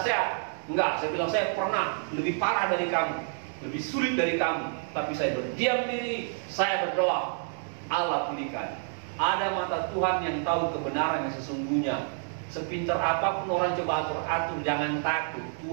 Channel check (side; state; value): left; silent; 59 dB below the other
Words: Enggak, saya bilang saya pernah lebih parah dari kamu, lebih sulit dari kamu. Tapi saya berdiam diri, saya berdoa. Allah pulihkan. Ada mata Tuhan yang tahu kebenaran yang sesungguhnya. Sepintar apapun orang coba atur, jangan takut.